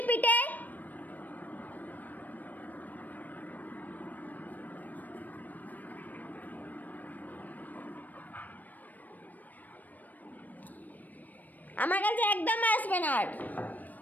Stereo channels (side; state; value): right; late; 0.083 ms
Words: পিঠে। আমার কাছে একদম আসবে না, আর